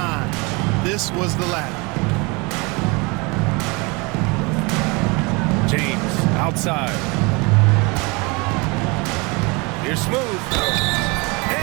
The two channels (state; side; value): quieter; left; 27.7 dB